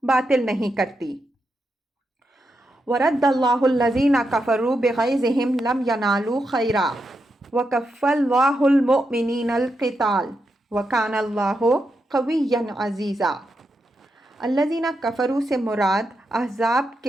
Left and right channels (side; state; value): both; normal; correlation 0.85